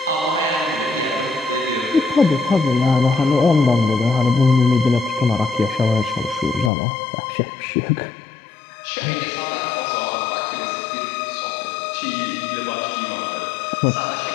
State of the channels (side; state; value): right; drops out; at 6.7 s